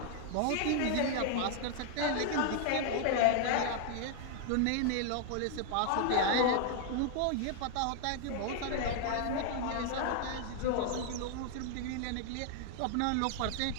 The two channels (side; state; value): both; different; correlation 0.00